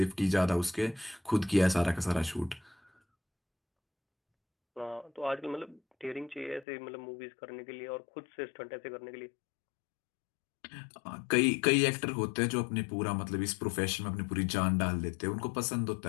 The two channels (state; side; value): drops out; right; at 6.7 s